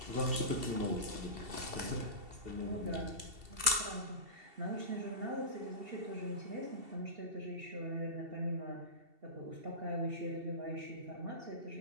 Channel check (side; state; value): left; late; 2.7 ms